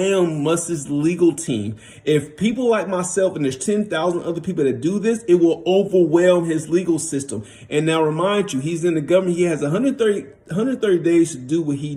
Musk's legal team. If people like myself, and there's 10,000 other people that do this, it will overwhelm his legal system. And now remind you, he's in the government. He has 130 days to do what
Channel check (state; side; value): identical; both; correlation 1.00